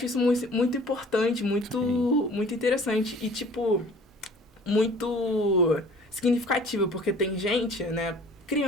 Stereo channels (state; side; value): normal; both; correlation 0.49